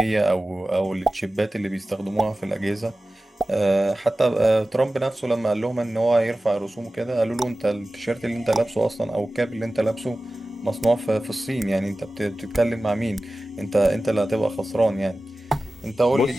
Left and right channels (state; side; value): normal; both; correlation 0.95